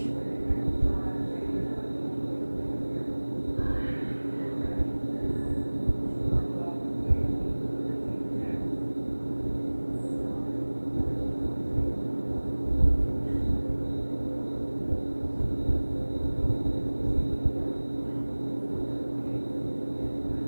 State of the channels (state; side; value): inverted; both; correlation -1.00